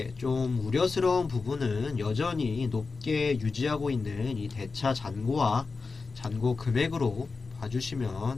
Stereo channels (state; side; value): quieter; right; 4.3 dB